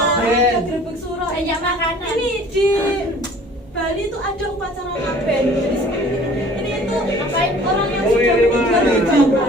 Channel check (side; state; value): both; normal; correlation 0.50